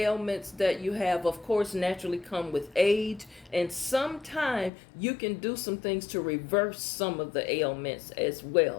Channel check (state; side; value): drops out; right; at 4.7 s